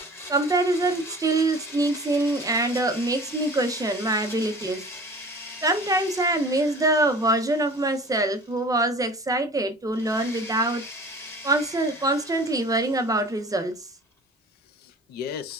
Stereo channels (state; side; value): normal; both; correlation 0.43